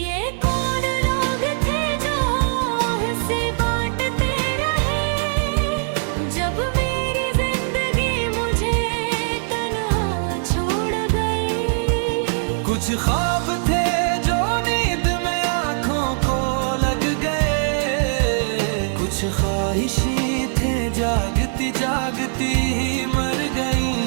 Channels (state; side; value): silent; left; digital silence